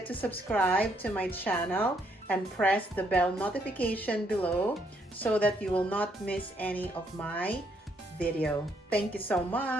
to subscribe to my channel and press the bell notification below so that you will not miss any of my video. Thank you so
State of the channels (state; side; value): normal; both; correlation 0.72